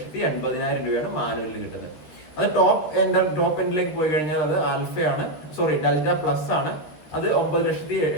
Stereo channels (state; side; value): late; right; 13 ms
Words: രൂപയാണ് മാനുവലിൽ കിട്ടുന്നത്. അത് ടോപ്പ് എൻഡിലേക്ക് പോയി കഴിഞ്ഞാൽ അത് ആൽഫയാണ്, ഡെൽറ്റ പ്ലസ് ആണ്. അത്